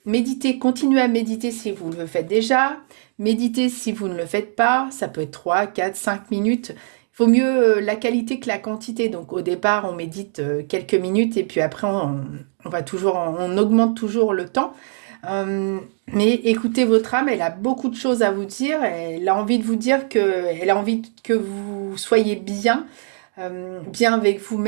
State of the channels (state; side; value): silent; left; digital silence